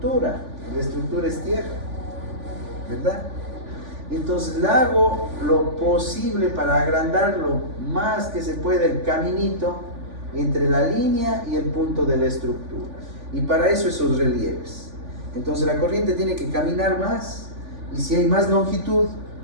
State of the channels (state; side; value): late; left; 3.5 ms